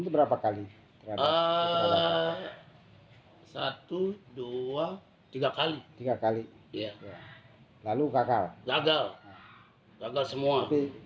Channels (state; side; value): identical; both; correlation 1.00